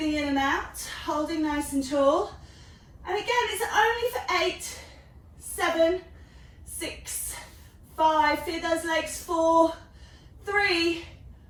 in and out, holding nice and tall. And again, it's only for 8, 7, 6, 5. Feel those legs. 4, 3,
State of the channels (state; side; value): identical; both; correlation 1.00